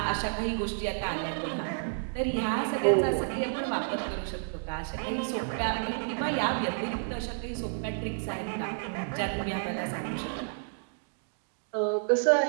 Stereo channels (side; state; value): left; silent; digital silence